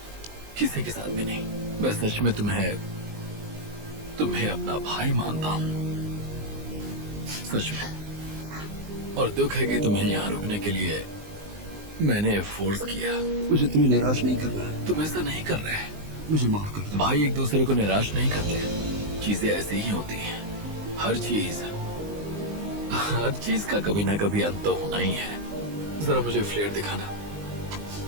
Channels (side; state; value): left; late; 19 ms